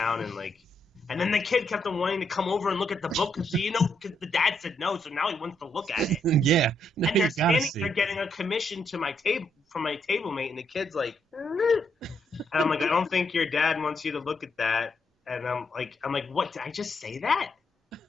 and then the kid kept on wanting to come over and look at the book because the dad said no, so now he wants to look at it. Yeah. And they're standing there getting a commission to my table from my table mate, and the kid's like, and I'm like, I don't think your dad wants you to look at that. And I'm like, what? Did I just say that?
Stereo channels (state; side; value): normal; both; correlation 0.77